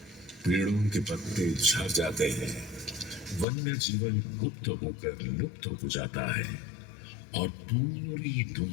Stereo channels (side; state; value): right; drops out; at 3.5 s